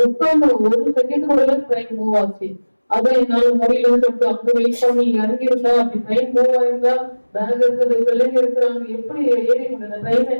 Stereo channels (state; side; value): inverted; both; correlation -1.00